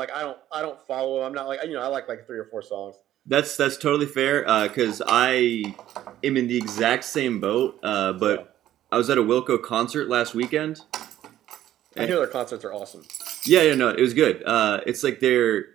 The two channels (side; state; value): left; quieter; 12.7 dB